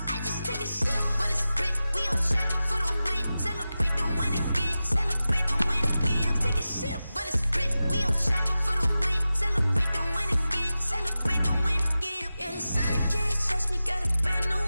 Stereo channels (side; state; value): both; inverted; correlation -0.94